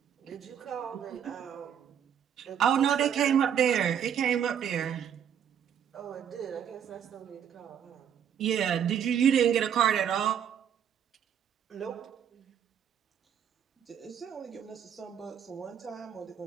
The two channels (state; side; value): quieter; left; 8.8 dB